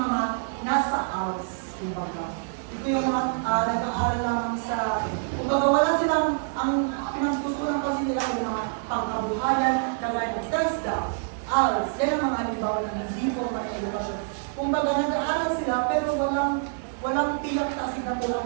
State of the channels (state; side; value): silent; left; digital silence